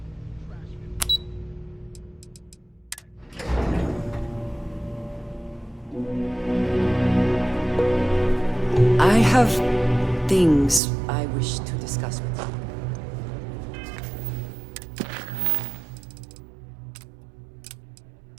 I have things I wish to discuss with you.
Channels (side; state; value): left; drops out; at 10.8 s